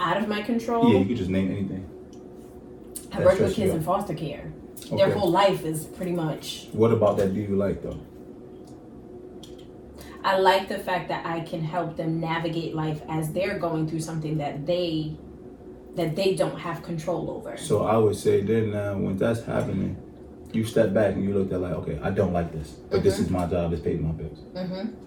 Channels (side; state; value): both; identical; correlation 1.00